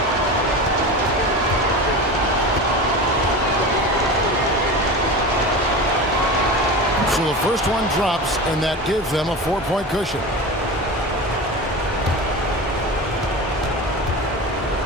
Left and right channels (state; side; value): normal; both; correlation 0.29